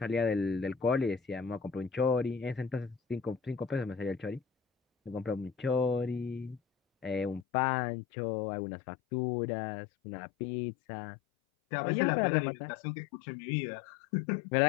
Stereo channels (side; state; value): right; drops out; at 7.5 s